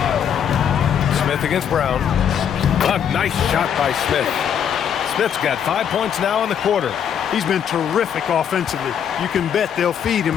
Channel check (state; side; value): quieter; right; 8.5 dB